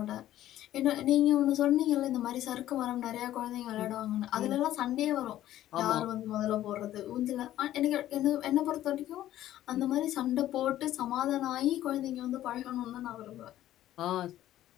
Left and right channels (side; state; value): right; quieter; 13.3 dB